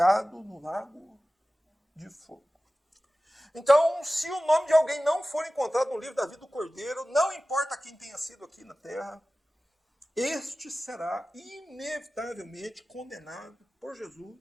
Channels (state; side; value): normal; both; correlation 0.96